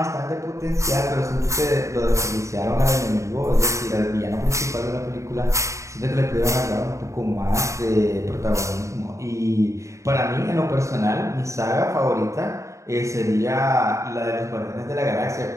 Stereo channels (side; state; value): left; late; 0.15 ms